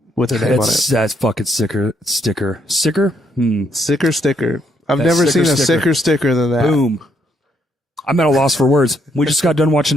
with their name on it. That's fucking sticker. Sicker? Sicker sticker. I've That never sicker seen a sticker. sicker sticker than that. Boom. I'm at a loss for words. We just got done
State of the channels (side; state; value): both; normal; correlation 0.73